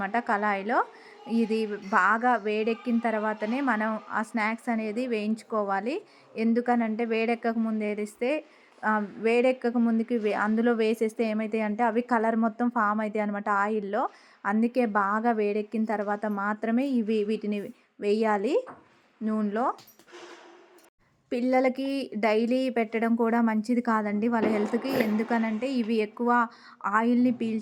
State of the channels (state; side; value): identical; both; correlation 1.00